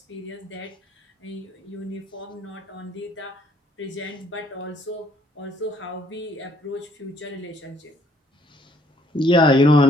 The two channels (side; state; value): both; normal; correlation 0.65